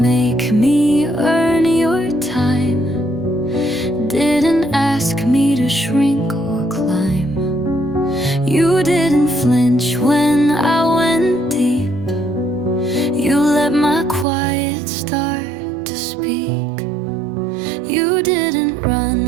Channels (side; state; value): left; drops out; at 14.2 s